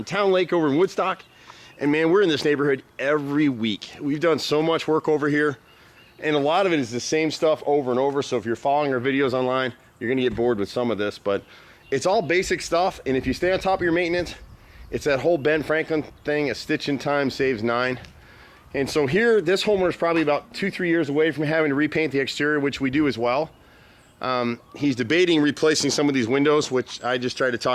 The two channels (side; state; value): both; identical; correlation 1.00